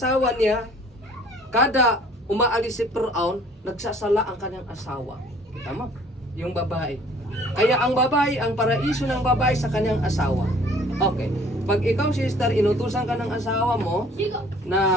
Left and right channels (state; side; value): normal; both; correlation 0.55